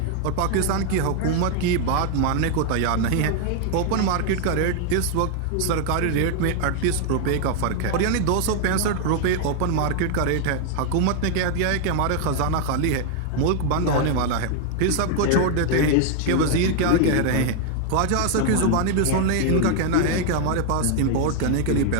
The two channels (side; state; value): both; different; correlation 0.00